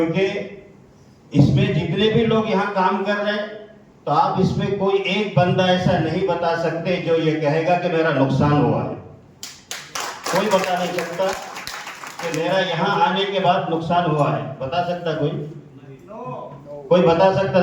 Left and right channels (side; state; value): both; identical; correlation 1.00